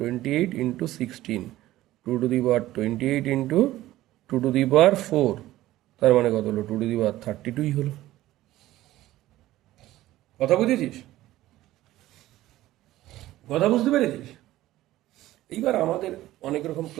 into 16, 2 to the power 28 into 2 to the power 4, তার মানে কত হলো? 2 টু দি পাওয়ার 32ই হলো। কথা বুঝেছিস? কথা বুঝতে পেরেছিস? এইবার আমাদের অনেক রকম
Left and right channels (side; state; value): left; quieter; 15.5 dB